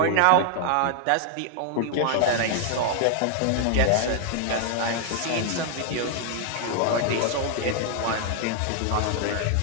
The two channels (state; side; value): different; both; correlation 0.00